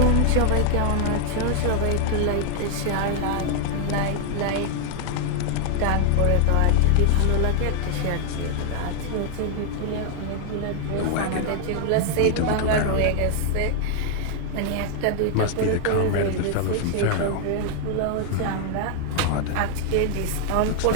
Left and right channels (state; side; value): different; both; correlation 0.00